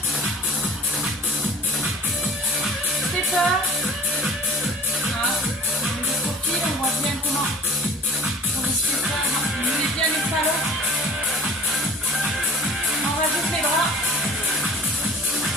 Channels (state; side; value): normal; both; correlation 0.46